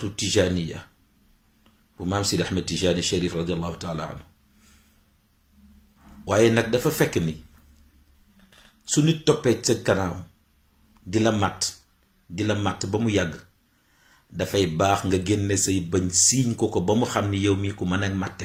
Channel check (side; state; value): both; identical; correlation 1.00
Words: tijaniya bu maam Seydi Ahmed Tijani Cherif radiallahu taala anhu waaye nag dafa fekk ni su nit toppee sa kanam di la màtt ba mu yàgg dafay baax nga génne say bëñ siiñ ko ba mu xam ni yow mii ku mën a màtte